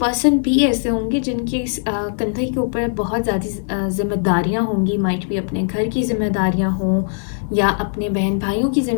भी ऐसे होंगे जिनके कंधे के ऊपर बहुत ज़्यादा जिम्मेदारियाँ होंगी, माइट भी अपने घर की जिम्मेदारियाँ हों या अपने बहन भाइयों की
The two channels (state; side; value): silent; right; digital silence